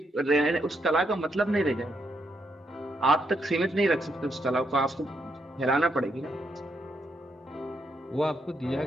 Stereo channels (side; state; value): both; normal; correlation 0.78